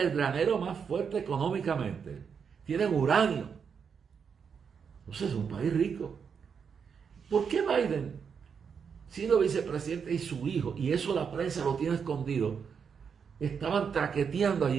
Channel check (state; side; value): quieter; left; 6.6 dB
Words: granero más fuerte económicamente. Tienen uranio. Entonces es un país rico. ¿Por qué Biden, siendo vicepresidente y su hijo, y eso la prensa lo tiene escondido, estaban traqueteando